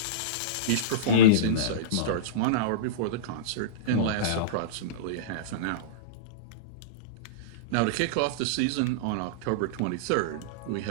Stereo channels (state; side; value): different; both; correlation -0.06